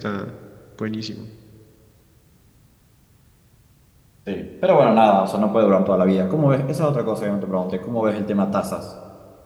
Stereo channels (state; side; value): identical; both; correlation 1.00